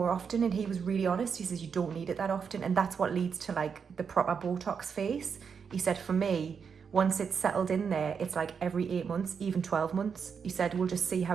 often. And he was really honest. He says you don't need it that often. And that's what leads to like the proper Botox face. He said for me, once it's settled in there, it's like every 8 months, even 12 months. He said, we'll just see how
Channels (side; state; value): left; quieter; 6.4 dB